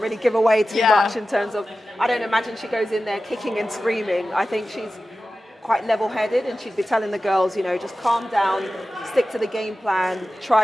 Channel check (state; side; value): normal; both; correlation 0.94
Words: give away too much in terms of, I don't imagine she goes in there kicking and screaming. I think she's quite level-headed, and she'd be telling the girls, just calm down, stick to the game plan,